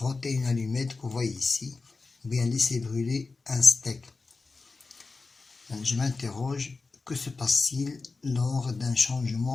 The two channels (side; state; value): right; quieter; 4.0 dB